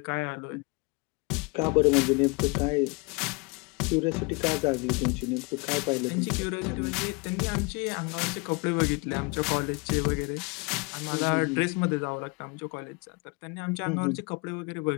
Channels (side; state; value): right; quieter; 29.1 dB